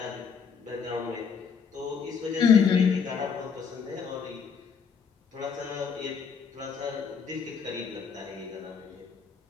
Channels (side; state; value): right; quieter; 6.3 dB